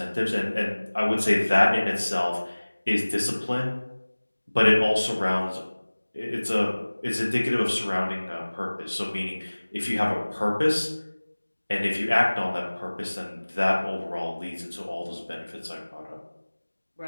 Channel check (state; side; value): inverted; both; correlation -1.00